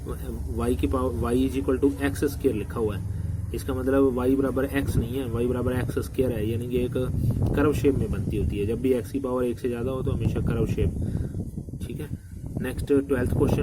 y की power y is equal to x square लिखा हुआ है, इसका मतलब y बराबर x नहीं है, y बराबर एक्स स्क्वायर है, यानी कि एक कर्व शेप में बनती होती है। जब भी x की पावर 1 से ज़्यादा हो तो हमेशा कर्व शेप। ठीक है, नेक्स्ट 12th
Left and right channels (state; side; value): identical; both; correlation 1.00